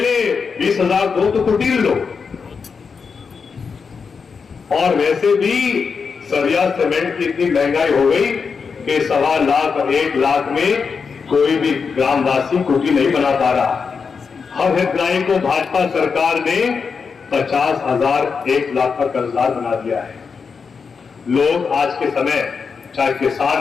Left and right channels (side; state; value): right; quieter; 5.5 dB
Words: 20,000 दो तो कुटीर लो। और वैसे भी सरिया सीमेंट की इतनी महंगाई हो गई कि 1.25 लाख और 1 लाख में कोई भी ग्रामवासी कुटी नहीं बना पा रहा। हर हितग्राही को भाजपा सरकार ने 50,000 1 लाख का कर्जदार बना दिया है। लोग आज के समय, चाहे